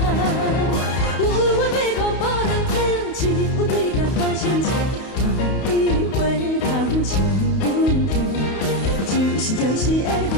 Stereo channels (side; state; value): right; late; 31 ms